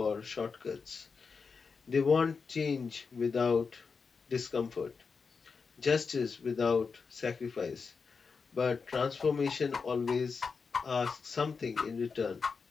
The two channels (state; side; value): quieter; right; 5.1 dB